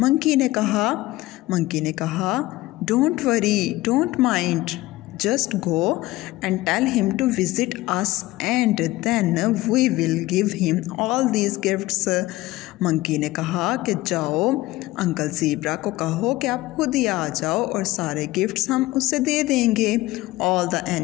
ने कहा don't worry, don't mind, just go and tell him to visit us and then we will give him all these gifts. Monkey ने कहा कि जाओ अंकल ज़ीब्रा को कहो कि आप खुद ही आ जाओ और सारे गिफ्ट्स हम उसे दे देंगे। All the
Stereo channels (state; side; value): quieter; right; 18.2 dB